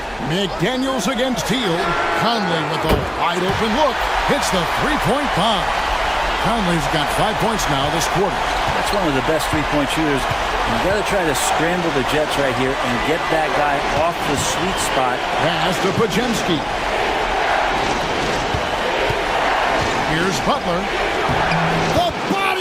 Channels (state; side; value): identical; both; correlation 1.00